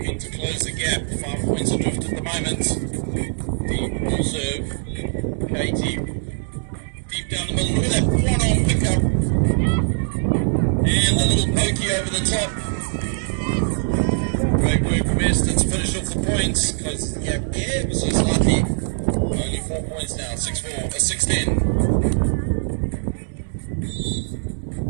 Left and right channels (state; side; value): silent; left; digital silence